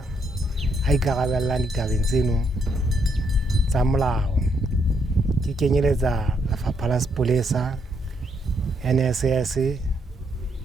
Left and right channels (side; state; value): both; normal; correlation 0.74